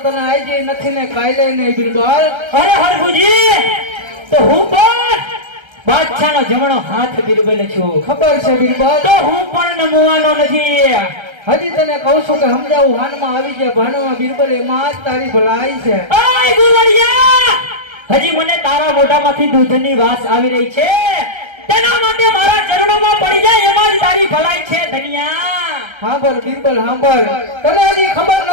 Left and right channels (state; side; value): late; left; 1.3 ms